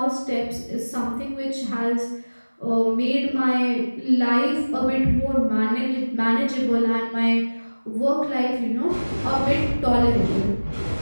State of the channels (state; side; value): inverted; both; correlation -1.00